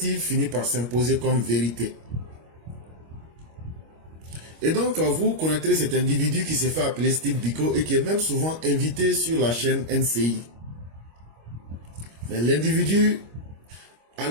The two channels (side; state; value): left; late; 25 ms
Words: finit par s'imposer comme vérité. Et donc, vous connaîtrez cet individu qui s'est fait appeler Steve Biko et qui est même souvent invité sur la chaîne NCI. Mais l'individu, à